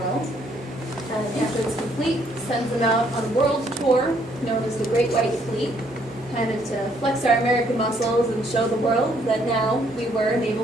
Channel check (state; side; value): normal; both; correlation 0.68